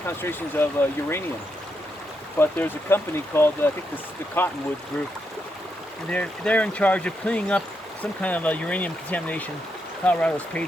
of uranium, but there's a company called, I think the Cottonwood Group, and they're in charge of cleaning up some kind of uranium contamination Colorado's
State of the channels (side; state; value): both; normal; correlation 0.81